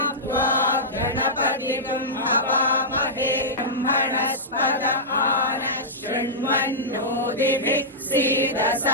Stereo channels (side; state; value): both; normal; correlation -0.13